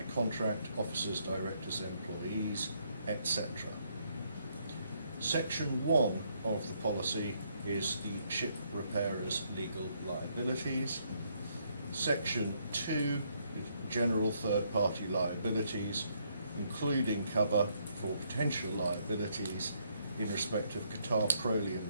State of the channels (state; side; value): inverted; both; correlation -0.72